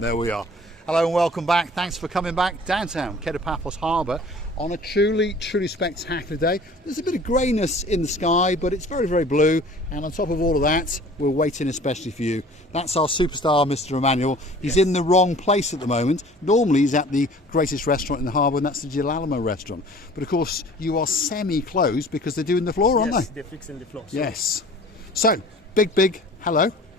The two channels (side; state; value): both; normal; correlation 0.47